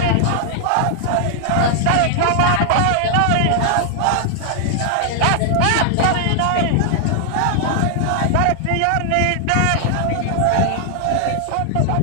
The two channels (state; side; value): different; both; correlation 0.00